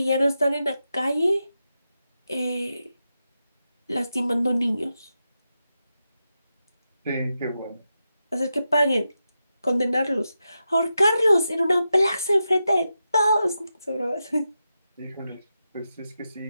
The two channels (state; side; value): inverted; both; correlation -0.89